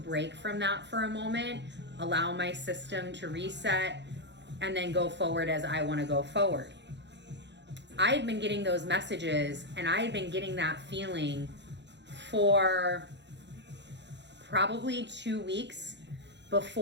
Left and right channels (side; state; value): left; late; 0.51 ms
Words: from that for a moment, allow my system to reset, and then go forward as I want to go forward. I had been getting those messages, and I had been getting that feeling for probably 2 weeks